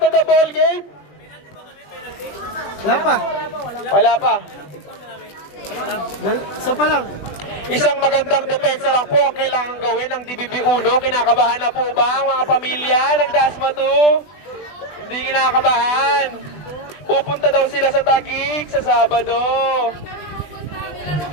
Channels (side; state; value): right; late; 20 ms